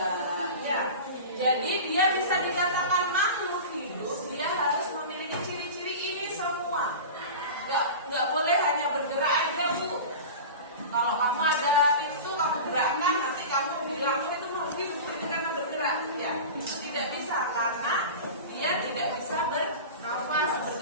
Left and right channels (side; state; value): both; inverted; correlation -0.31